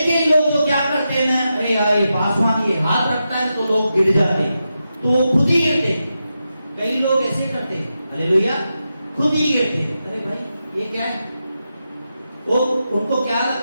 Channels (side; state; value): both; inverted; correlation -0.88